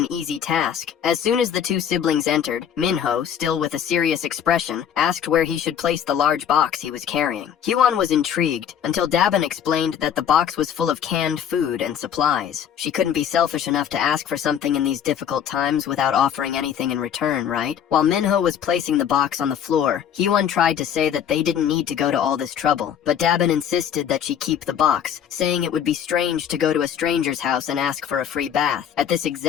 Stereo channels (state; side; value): quieter; right; 9.0 dB